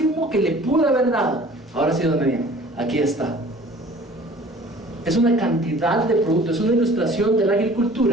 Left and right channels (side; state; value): both; normal; correlation 0.49